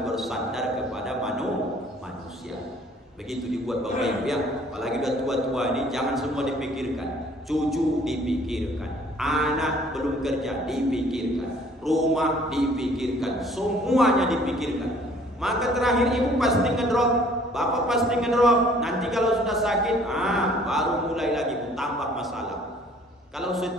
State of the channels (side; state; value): both; normal; correlation 0.57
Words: bersandar kepada manusia. Begitu dibuat Bapak Ibu ya. Apalagi udah tua-tua ini, jangan semua dipikirkan. Cucu dipikirkan, anak belum kerja dipikirkan, rumah dipikirkan, semuanya dipikirkan. Maka terakhir ibu pasti ngedrop, bapak pasti ngedrop. Nanti kalau sudah sakit, baru mulai lagi tambah masalah. Kalau